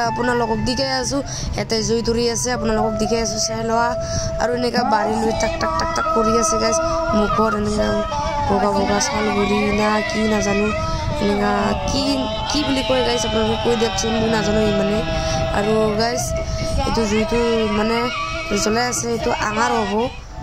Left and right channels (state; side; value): identical; both; correlation 1.00